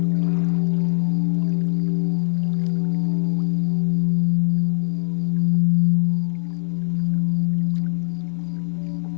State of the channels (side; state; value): right; silent; digital silence